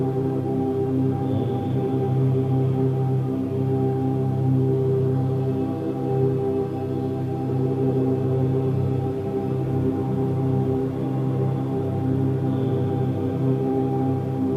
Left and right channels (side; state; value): both; identical; correlation 1.00